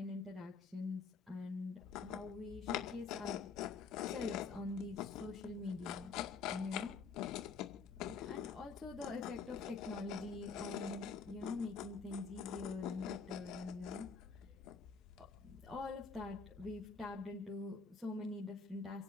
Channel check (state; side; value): quieter; right; 5.1 dB